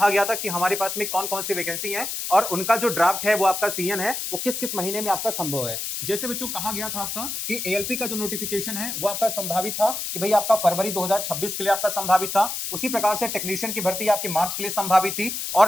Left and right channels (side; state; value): left; noise; hiss, 4 dB below the sound